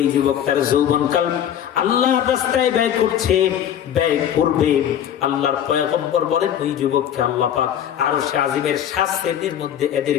যুবক তার যৌবন কাল আল্লাহ রাস্তায় ব্যয় করছে, ব্যয় করবে, আল্লাহর পয়গম্বর বলেন ওই যুবককে আল্লাহ পাক আরশে আজিমের 7 শ্রেণীর মধ্যে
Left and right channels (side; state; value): right; quieter; 10.0 dB